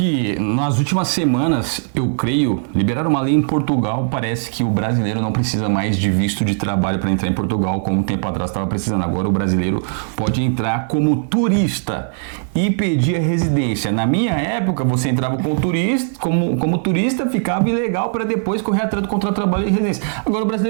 nas últimas semanas, eu creio, liberaram uma lei em Portugal. Parece que o brasileiro não precisa mais de visto de trabalho para entrar em Portugal, como um tempo atrás estava precisando. Agora o brasileiro pode entrar como turista e pedir a residência. Na minha época, você entrava como turista, ficava ilegal para depois correr atrás do contrato de trabalho e residência. Agora o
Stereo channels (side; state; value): left; silent; digital silence